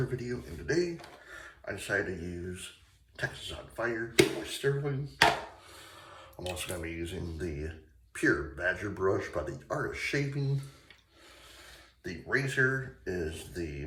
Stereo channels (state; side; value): identical; both; correlation 1.00